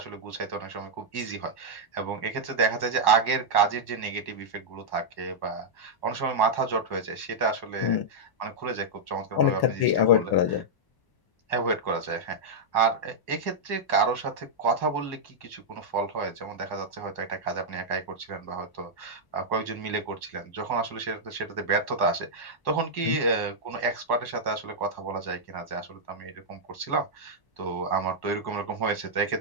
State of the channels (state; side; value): late; right; 1.1 ms